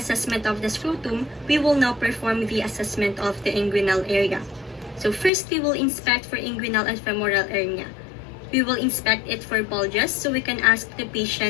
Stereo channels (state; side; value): drops out; right; at 5.3 s